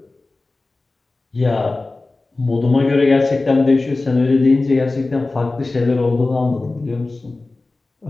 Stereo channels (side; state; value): right; quieter; 3.3 dB